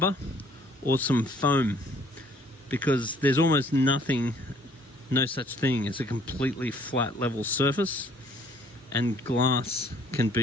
or some foam, because there's almost nothing, no such thing as a completely flat level surface, and glass can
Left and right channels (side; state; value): both; normal; correlation 0.60